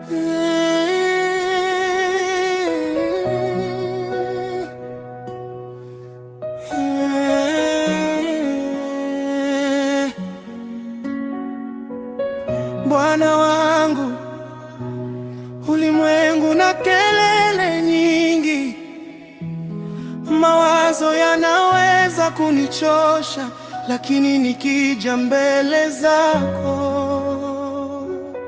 Bwana wangu, ulimwengu na kelele nyingi, mawazo yanaweza kunichosha, lakini nikija mbele zako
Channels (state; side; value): identical; both; correlation 1.00